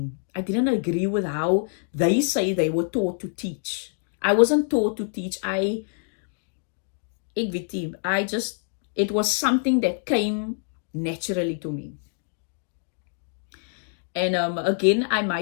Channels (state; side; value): silent; right; 61 dB below the other